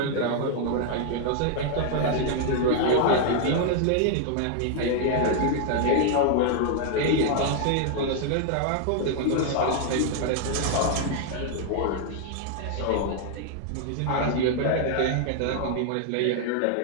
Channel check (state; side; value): different; both; correlation 0.00